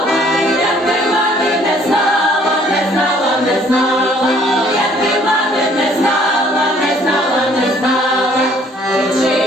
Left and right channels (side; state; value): both; normal; correlation 0.60